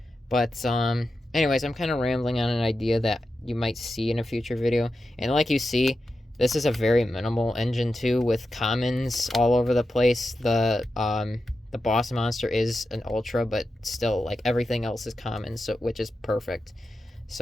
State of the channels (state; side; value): normal; both; correlation 0.90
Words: But anyways, I'm kind of rambling on an idea that you might see in a future video. And like you see, this is a very minimal engine too, with commons all over the place. The boss monster is an ultra, but still, like, everything else is common, so which is perfect.